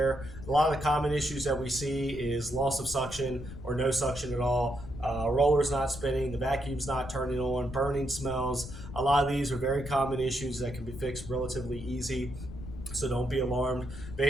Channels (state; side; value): noise; left; rumble, 11 dB below the sound